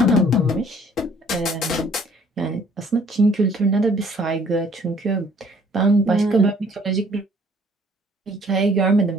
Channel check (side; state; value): both; normal; correlation 0.59